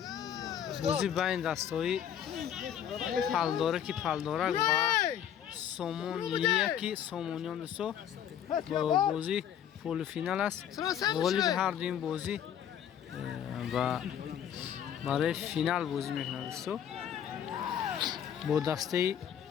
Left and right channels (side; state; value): right; quieter; 9.5 dB